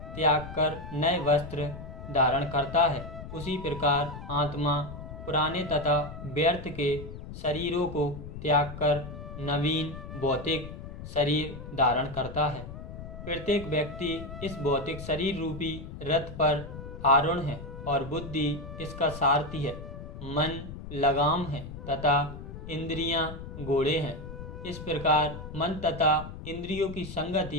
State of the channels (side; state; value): left; noise; rumble, 11 dB below the sound